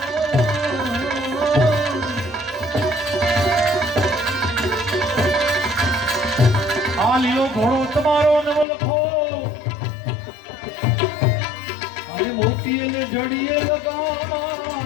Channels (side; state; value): right; drops out; at 8.7 s